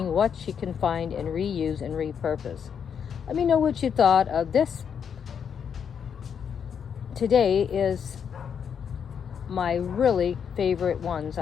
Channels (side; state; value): right; quieter; 7.5 dB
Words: what she can find and reuse and repurpose. Let me know what you thought of this. Today is my really favorite ones,